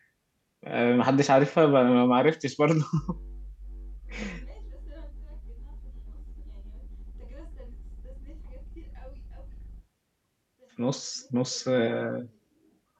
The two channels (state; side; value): identical; both; correlation 1.00